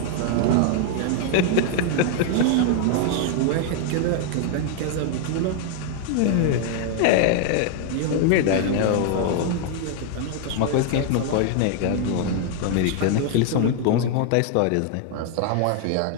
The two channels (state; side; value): different; both; correlation 0.00